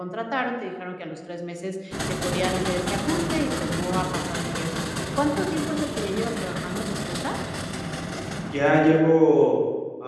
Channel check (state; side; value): identical; both; correlation 1.00